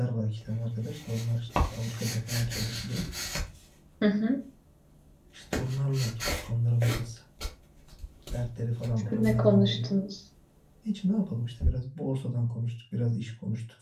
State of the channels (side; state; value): both; identical; correlation 1.00